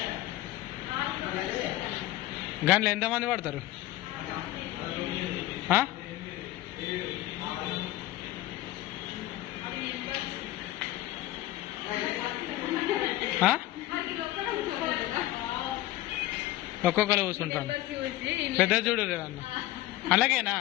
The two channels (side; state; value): right; quieter; 16.0 dB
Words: గంటలు ఎంతమంది పడతారు? ఒక్కొక్కరు కూర్చుంటాను. పెద్ద చూడు అన్న, అలాగేనా?